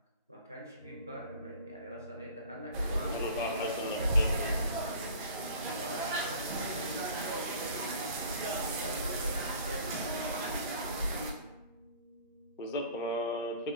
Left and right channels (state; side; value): inverted; both; correlation -0.46